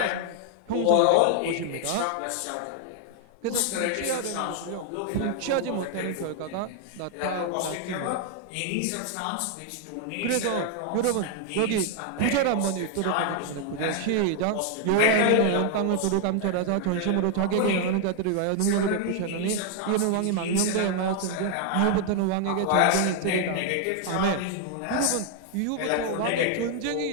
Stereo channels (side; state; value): both; different; correlation 0.00